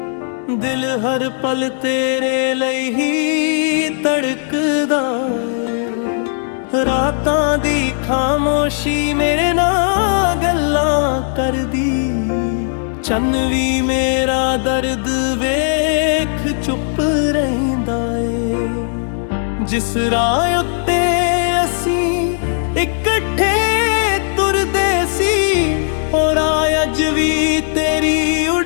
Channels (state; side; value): silent; right; 67 dB below the other